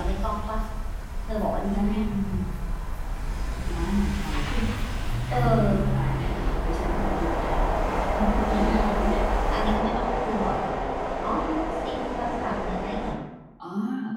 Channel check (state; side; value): identical; both; correlation 1.00